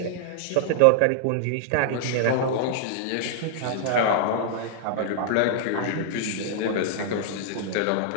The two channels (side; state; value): both; different; correlation -0.01